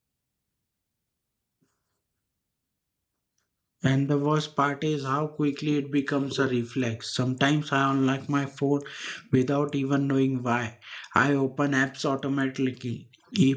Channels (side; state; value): both; identical; correlation 1.00